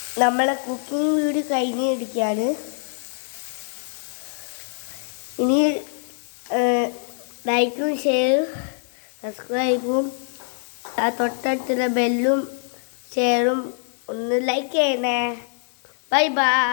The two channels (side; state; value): right; silent; 63 dB below the other